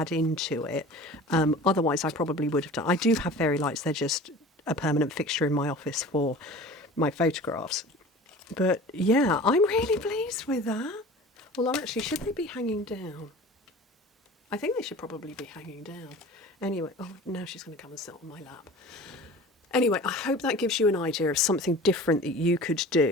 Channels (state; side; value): normal; both; correlation 0.40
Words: into it. Otherwise, I probably would have done. I do have fairy lights. They're just a permanent fixture in my office for my photographs. But yeah, I'm really pleased with that. Well, actually, should they be hanging down? I think they should probably be hanging down. Anyway, oh, now she's going to come and sit on my lap. Anyway, I hope that gives you an idea of something different that you could